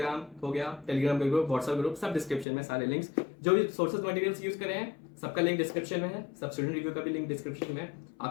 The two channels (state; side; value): drops out; right; at 2.5 s